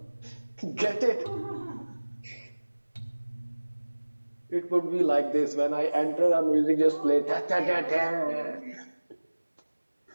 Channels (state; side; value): inverted; both; correlation -1.00